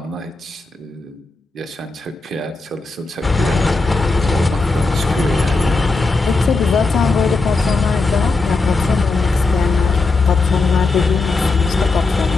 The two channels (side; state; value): right; quieter; 3.6 dB